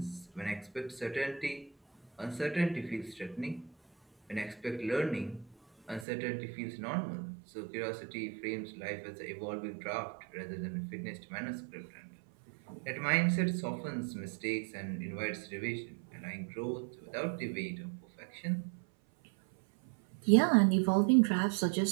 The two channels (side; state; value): left; drops out; at 6.1 s